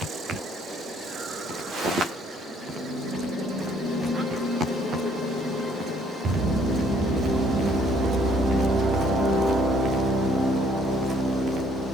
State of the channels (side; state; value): both; normal; correlation 0.64